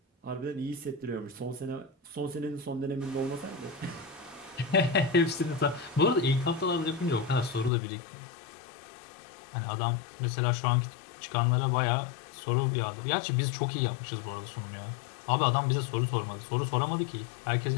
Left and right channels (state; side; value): drops out; right; at 7.7 s